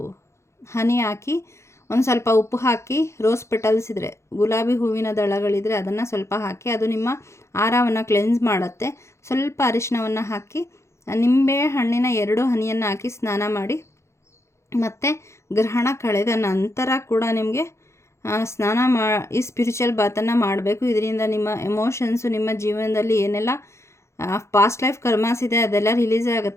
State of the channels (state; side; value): late; right; 0.13 ms